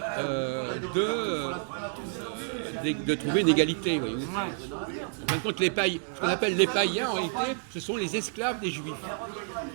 de trouver une égalité. Voyez-vous. En fin de compte, ce qu'on appelle les païens, en réalité, ce sont les esclaves des juifs.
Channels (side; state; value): left; silent; digital silence